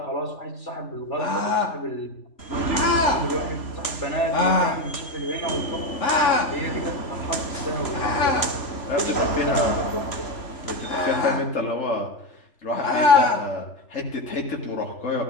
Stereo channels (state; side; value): late; right; 3.0 ms